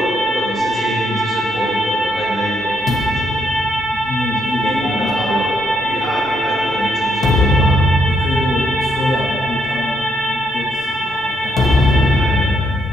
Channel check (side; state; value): both; normal; correlation 0.76